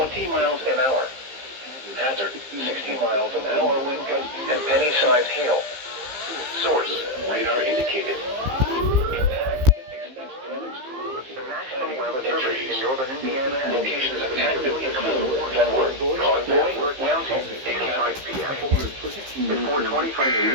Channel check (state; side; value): late; left; 15 ms